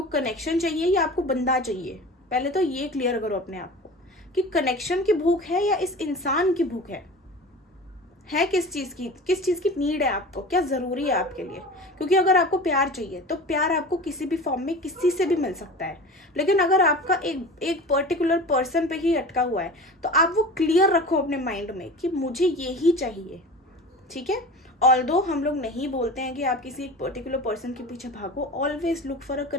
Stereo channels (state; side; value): normal; both; correlation 0.36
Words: कनेक्शन चाहिए या आपको बंदा चाहिए. पहले तो ये क्लियर करो अपने आप को कि कनेक्शन की भूख है या इस इंसान की भूख है किस चीज़ की नीड है आपको, क्या ज़रूरी है आपके लिए. क्योंकि अगर आपको प्यार चाहिए तो प्यार आपको किसी भी फॉर्म में किसी से भी मिल सकता है. लेकिन अगर आपका एक पर्टिकुलर पर्सन पे ही अटका हुआ है तो आप वो क्लियर रखो अपने माइंड में कि मुझे ये ही चाहिए. ठीक है. ऑल्दो हम लोग नहीं बोलते हैं कि आप किसी एक पर्टिकुलर पर्सन के पीछे भागो. Always look for a